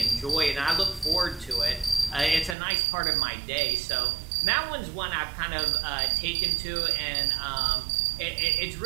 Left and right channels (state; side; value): drops out; left; at 2.6 s